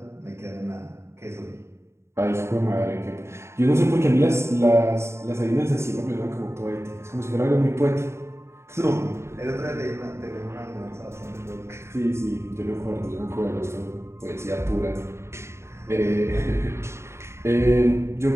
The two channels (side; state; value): left; late; 0.13 ms